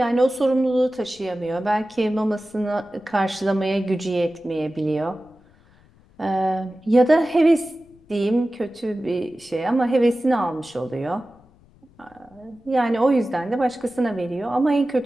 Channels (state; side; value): noise; left; rumble, 29 dB below the sound